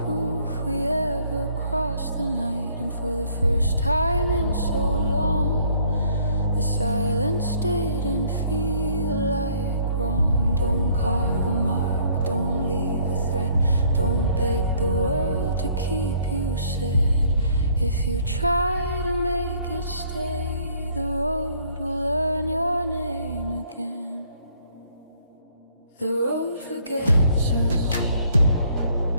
proof we ever crossed the night. And for the first time in so long, the silence didn't feel like wrong. Don't carve a mark, don't leave a threat, don't beg the world to keep you said. If you try to make it stay, the road will learn your name again. The road forgets us,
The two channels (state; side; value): inverted; both; correlation -0.62